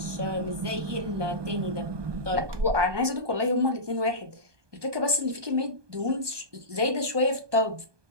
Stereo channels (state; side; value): late; left; 1.2 ms